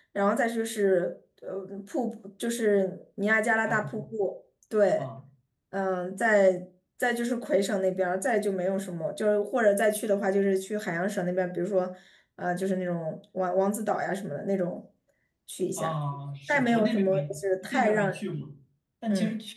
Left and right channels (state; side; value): identical; both; correlation 1.00